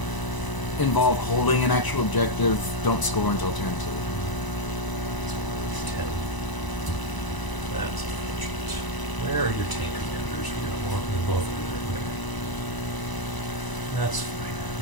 involve holding an actual objective don't score until turn 2. 10. That's unfortunate. Where are your tank commanders? We got one. They're both over there. Okay. That's fine.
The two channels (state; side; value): late; right; 1.0 ms